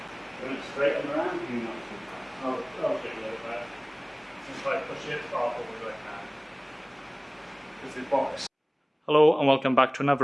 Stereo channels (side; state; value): both; identical; correlation 1.00